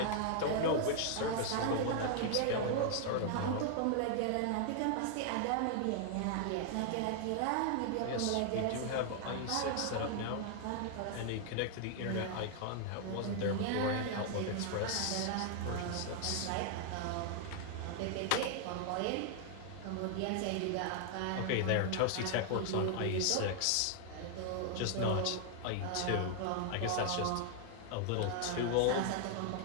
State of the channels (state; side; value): different; both; correlation 0.00